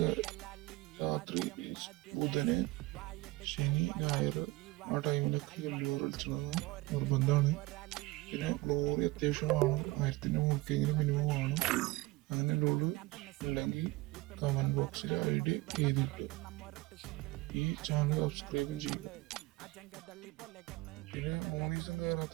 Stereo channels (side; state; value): left; quieter; 21.0 dB